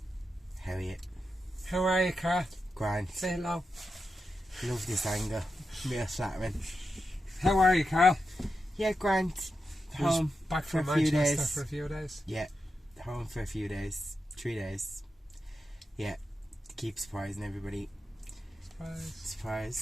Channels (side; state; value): both; normal; correlation 0.88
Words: How are you? How are you, Carl? Grand. Say hello. Love this angle. Real flattering. How are you, Carl? Yeah, grand. Home back for from a few Manchester days. for a few days. Yeah, home for a few days. 3 days. Yeah, to keep surprising everybody.